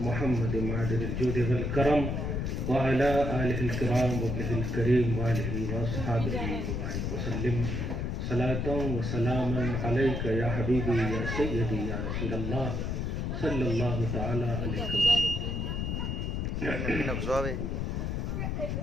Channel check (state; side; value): noise; left; rumble, 1 dB below the sound